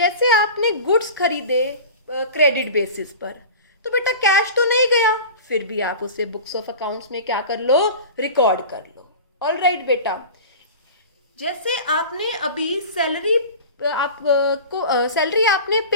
आपने गुड्स खरीदे क्रेडिट बेसिस पर, तो बेटा कैश तो नहीं गया, फिर भी आप उसे बुक्स ऑफ अकाउंट्स में क्या कर लो? रिकॉर्ड कर लो। ऑलराइट बेटा, जैसे आपने अभी सैलरी आपने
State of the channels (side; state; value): both; inverted; correlation -0.35